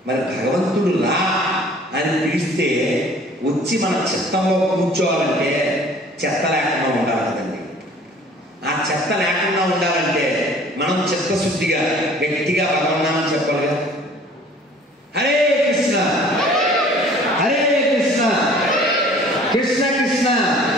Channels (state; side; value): normal; both; correlation 0.51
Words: మరి భగవంతుడు రా అని పిలిస్తే వచ్చి మన చిత్తంలో కూర్చోవాలంటే చెత్త లేకుండా ఉండాలి కదండి. ఆ చెత్త లేకుండా ఉండాలంటే మనం చిత్తశుద్ధిగా గట్టిగా భగవన్నామని చెప్పాలి కదా. హరే కృష్ణ హరే కృష్ణ కృష్ణ కృష్ణ